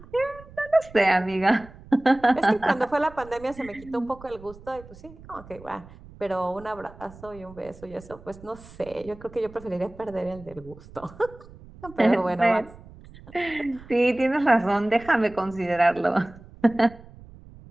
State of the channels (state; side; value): noise; right; rumble, 20 dB below the sound